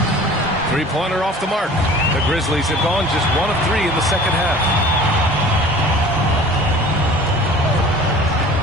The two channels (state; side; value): normal; both; correlation 0.45